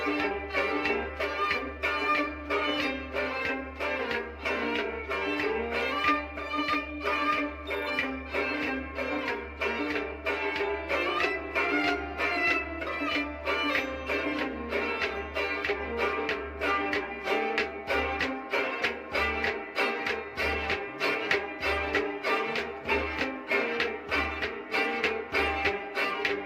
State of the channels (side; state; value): both; identical; correlation 1.00